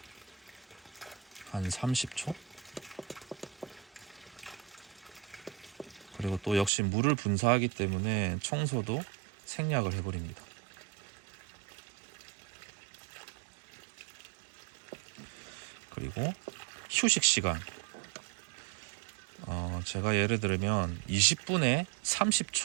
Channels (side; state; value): left; drops out; at 6.7 s